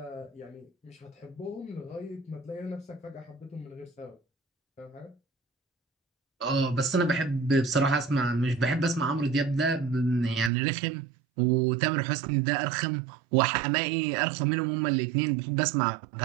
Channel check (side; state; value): left; drops out; at 10.5 s